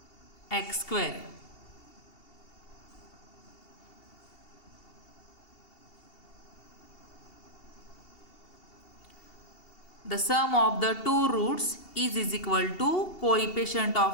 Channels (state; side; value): late; right; 2.7 ms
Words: x square. The sum of the two roots is equal to coefficient